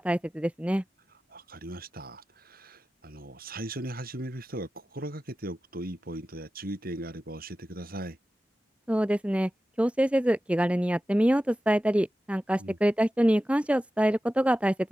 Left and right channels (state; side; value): normal; both; correlation 0.94